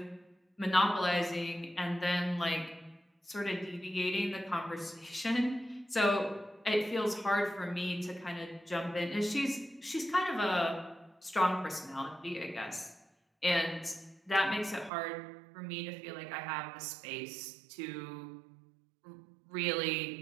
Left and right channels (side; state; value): left; drops out; at 14.9 s